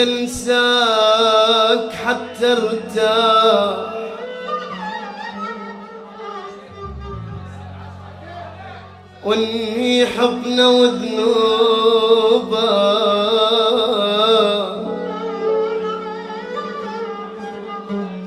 حتى ارتاح، وانهي حضنه وذنوبه،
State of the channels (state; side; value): identical; both; correlation 1.00